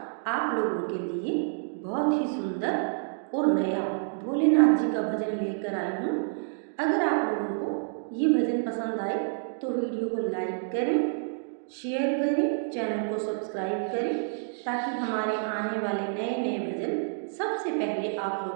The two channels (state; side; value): silent; left; digital silence